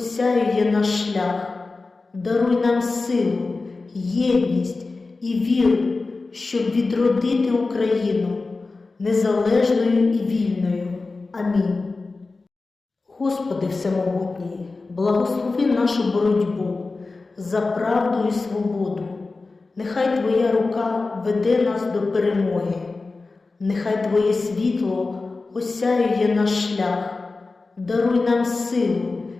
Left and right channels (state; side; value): quieter; right; 3.7 dB